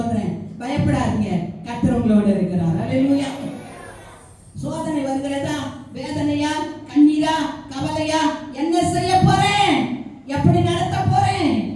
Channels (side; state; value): both; identical; correlation 1.00